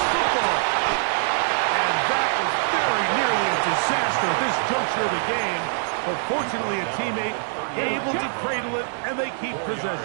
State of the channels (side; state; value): left; silent; 63 dB below the other